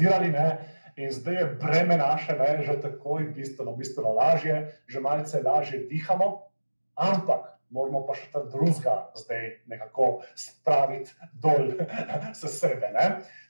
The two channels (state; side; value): inverted; both; correlation -1.00